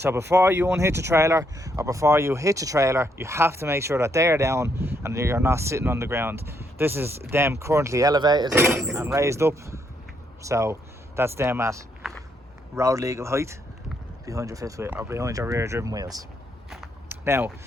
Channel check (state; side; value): normal; both; correlation 0.75